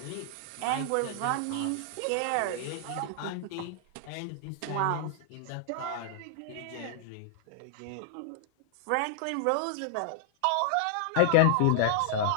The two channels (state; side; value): different; both; correlation -0.01